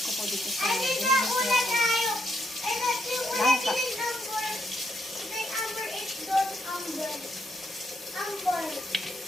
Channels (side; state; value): both; normal; correlation 0.76